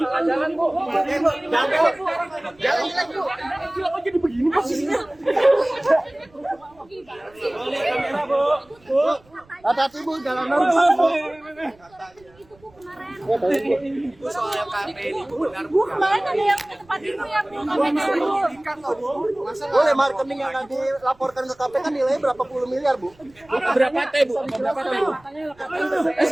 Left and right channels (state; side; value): noise; right; rumble, 30 dB below the sound